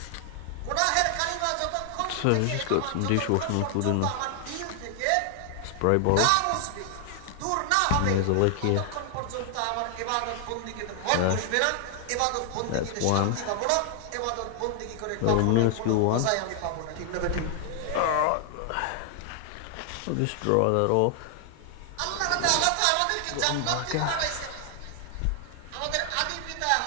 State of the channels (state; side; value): different; both; correlation 0.00